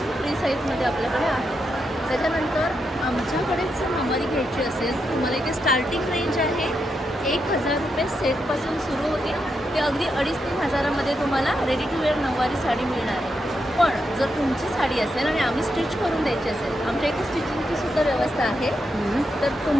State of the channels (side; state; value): both; normal; correlation 0.83